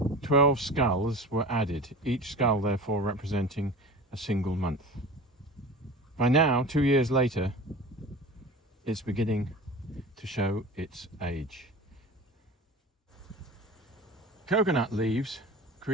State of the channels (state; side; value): normal; both; correlation 0.36